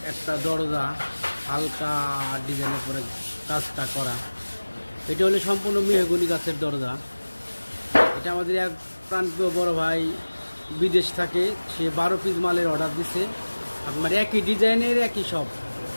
একটা দরজা হালকা ডিজাইনের পরে কাজটা করা। এটা হলো সম্পূর্ণ মেহগনি গাছের দরজা। এটা আমাদের এক প্রান্তীয় বড় ভাই বিদেশ থাকে, সে 12 পিস মালের অর্ডার দিছে। আপনার একই ডিজাইনের একই সব,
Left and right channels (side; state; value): both; inverted; correlation -1.00